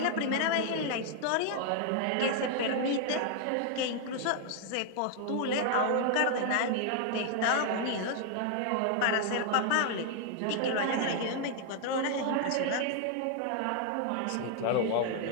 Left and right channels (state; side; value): different; both; correlation 0.00